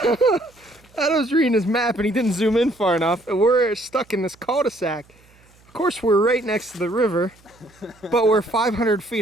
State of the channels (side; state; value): right; noise; hum, 30 dB below the sound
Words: Adam's reading his map and he didn't zoom in far enough. And we're stuck in this cul-de-sac. Of course, we're right next to the river, but we're 500